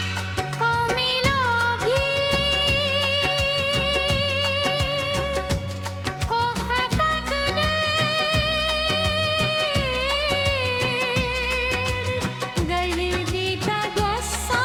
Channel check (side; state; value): both; identical; correlation 1.00